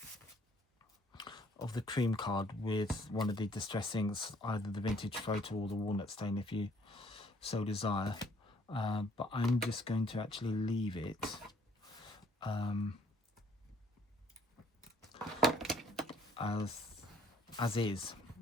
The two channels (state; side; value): normal; both; correlation 0.61